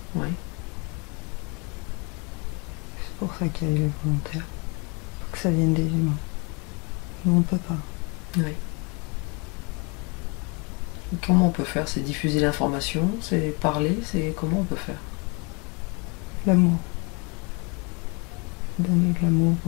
Oui. C'est pour ça qu'il y a les volontaires. Faut que ça vienne des humains. Nous, on peut pas. Oui. Et comment on peut faire? C'est diffuser l'information? C'est parler? C'est comment on peut faire? L'amour. Donner de l'amour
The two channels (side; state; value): right; quieter; 31.4 dB